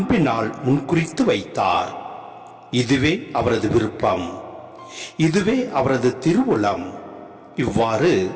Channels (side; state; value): both; identical; correlation 1.00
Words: முன்குறித்து வைத்தார். இதுவே அவரது விருப்பம், இதுவே அவரது திருவுளம். இவ்வாறு